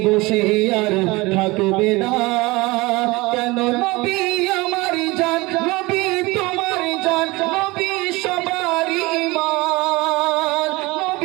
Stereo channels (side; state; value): left; quieter; 22.7 dB